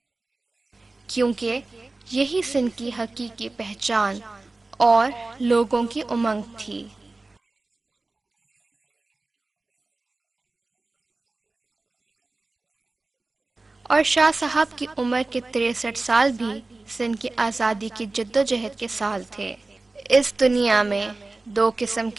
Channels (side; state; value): left; quieter; 3.2 dB